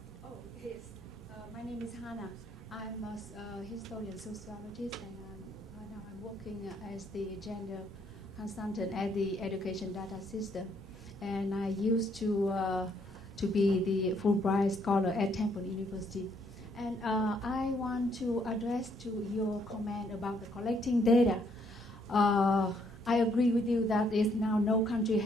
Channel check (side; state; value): both; normal; correlation 0.69